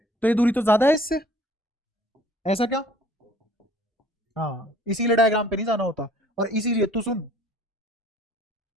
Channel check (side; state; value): both; normal; correlation 0.54